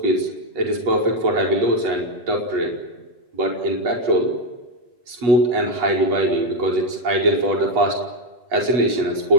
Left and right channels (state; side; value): late; left; 8.2 ms